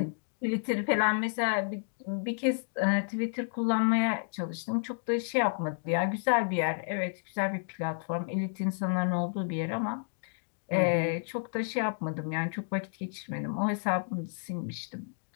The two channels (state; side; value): silent; right; digital silence